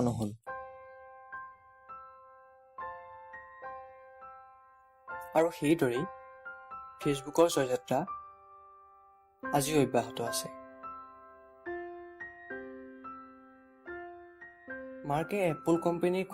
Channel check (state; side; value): identical; both; correlation 1.00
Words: নহ'ল। আৰু সেইদৰেই ফেচবুকৰ জয়যাত্ৰা আজিও অব্যাহত আছে। মাৰ্কে এপল কোম্পানীৰ